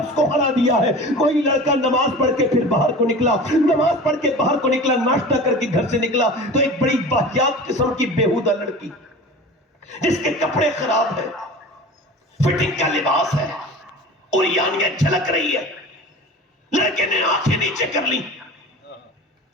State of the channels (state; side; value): normal; both; correlation 0.36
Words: کو ہرا دیا ہے۔ کوئی لڑکا نماز پڑھ کے پھر باہر کو نکلا، نماز پڑھ کے باہر کو نکلا، ناشتہ کر کے گھر سے نکلا تو ایک بڑی واہیات قسم کی بیہودہ لڑکی جس کے کپڑے خراب ہیں، فٹنگ کا لباس ہے، اور یانیاں جھلک رہی ہے، لڑکے نے آنکھیں نیچے کر لی۔